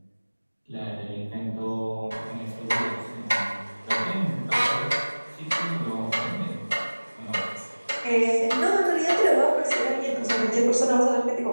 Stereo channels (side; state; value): both; inverted; correlation -1.00